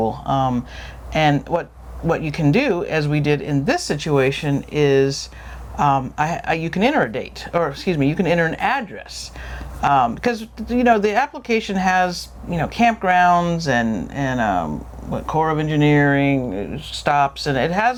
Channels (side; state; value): both; identical; correlation 1.00